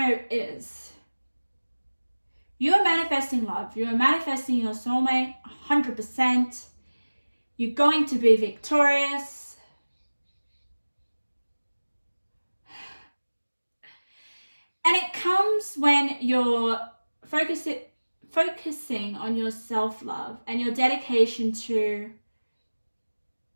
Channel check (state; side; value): inverted; both; correlation -1.00